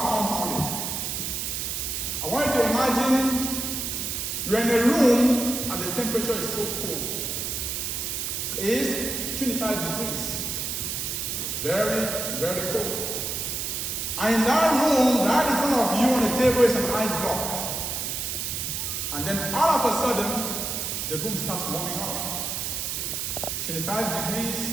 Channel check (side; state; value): right; noise; hiss, 2 dB below the sound